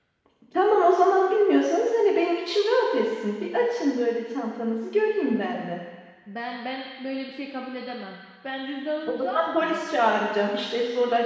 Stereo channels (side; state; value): both; identical; correlation 1.00